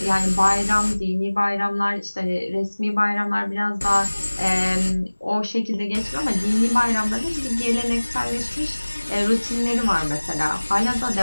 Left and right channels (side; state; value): both; inverted; correlation -1.00